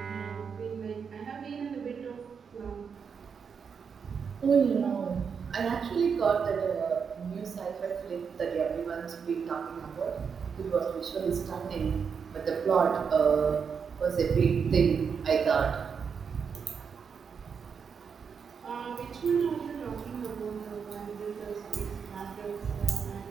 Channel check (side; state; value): left; quieter; 6.3 dB